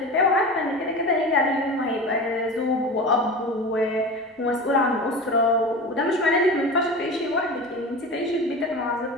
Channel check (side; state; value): both; normal; correlation 0.30